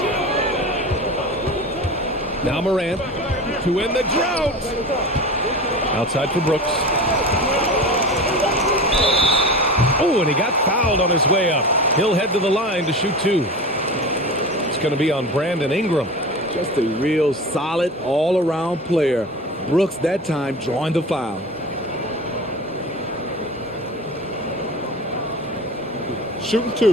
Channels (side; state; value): both; normal; correlation 0.31